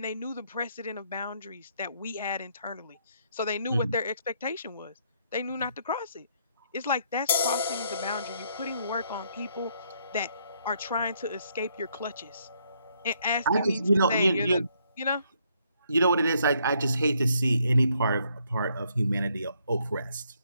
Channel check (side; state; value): both; inverted; correlation -0.71